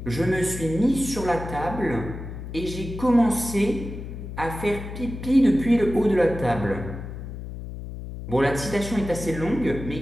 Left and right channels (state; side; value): noise; left; hum, 9 dB below the sound